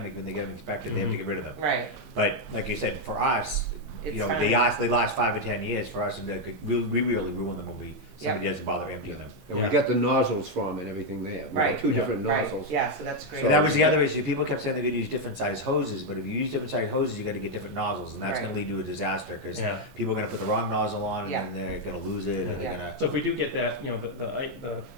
when they get them inspected, they have to get rid of them. Right, But like you said, for us, It's you know, fine. they last 5 or 10 years. For us, we really ruin them when somebody doesn't bother emptying them. And we Yeah. got the nozzles from and everything there. We got Right. 2 different right, nozzles. yeah, so that's great. So that was the other issue. People kept saying they're going to use different size hoses, but if you use different size hoses, you got to get different nozzles, and that's Right. going to lead to a disaster because Yeah. people are going to put the wrong nozzle on, Yeah. and then they're going to lose it, and they're Yeah. going to. So if we do get that, you know, the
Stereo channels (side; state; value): both; normal; correlation 0.01